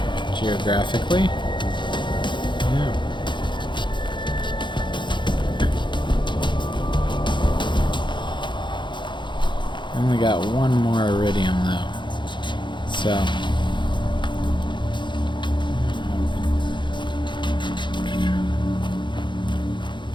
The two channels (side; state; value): right; late; 0.23 ms